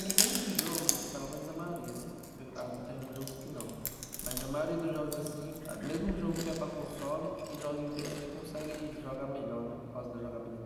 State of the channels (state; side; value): identical; both; correlation 1.00